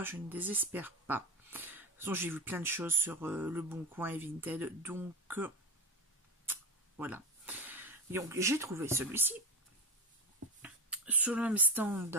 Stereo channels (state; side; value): normal; both; correlation 0.19